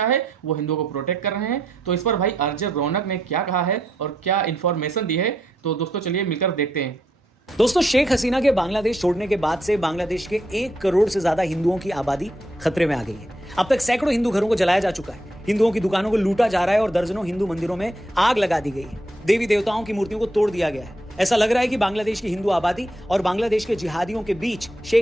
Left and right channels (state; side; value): normal; both; correlation 0.78